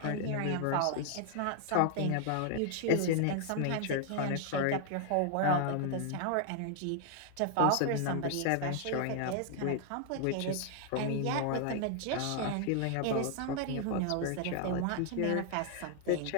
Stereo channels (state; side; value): different; both; correlation 0.00